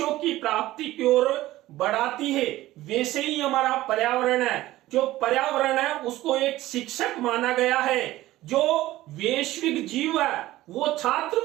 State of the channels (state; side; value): quieter; left; 16.2 dB